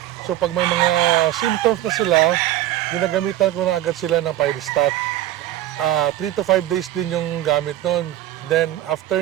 So pag may mga symptoms na sila, ginagamitan ko na agad sila ng Pyristat. 3 to 5 days din yung gamit nun. Then after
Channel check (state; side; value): quieter; left; 13.5 dB